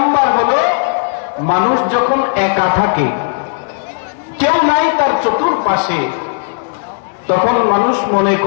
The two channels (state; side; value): silent; right; digital silence